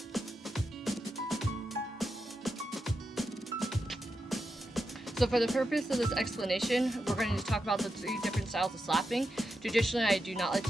So for the purpose of this explanation, we're going to talk about the 3 different styles of slapping. Traditionally, I do not like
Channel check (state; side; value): normal; both; correlation 0.87